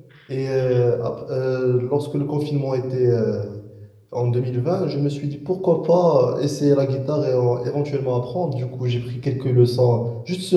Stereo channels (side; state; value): both; identical; correlation 1.00